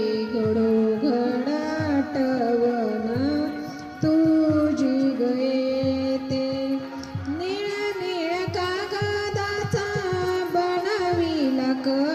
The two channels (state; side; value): identical; both; correlation 1.00